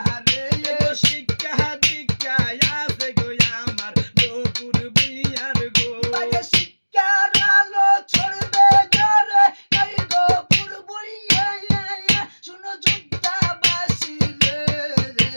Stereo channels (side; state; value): both; inverted; correlation -1.00